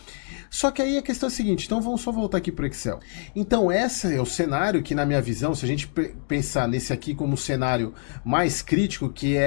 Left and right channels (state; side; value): silent; right; 62 dB below the other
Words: Só que aí a questão é a seguinte, então vamos só voltar aqui para o Excel. Então esse é o cenário que, na minha visão, se a gente pensar nesse aqui como um cenário mais crítico, que